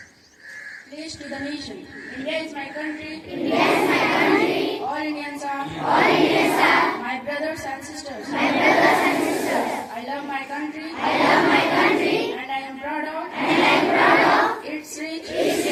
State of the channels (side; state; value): both; identical; correlation 1.00